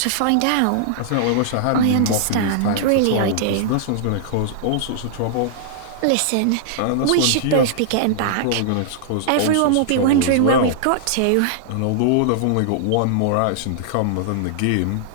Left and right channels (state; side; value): different; both; correlation -0.01